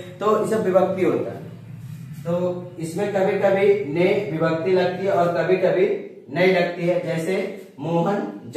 तो ये सब विभक्ति होता है। तो इसमें कभी कभी ने विभक्ति लगती है और कभी कभी नहीं लगती है। जैसे मोहन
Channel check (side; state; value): both; identical; correlation 1.00